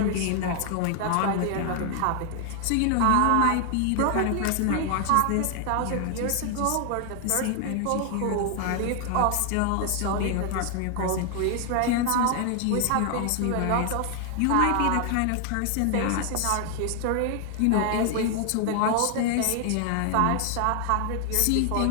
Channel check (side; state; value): both; different; correlation 0.00